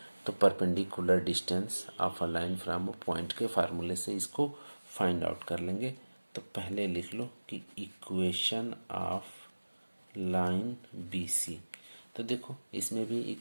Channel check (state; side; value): inverted; both; correlation -1.00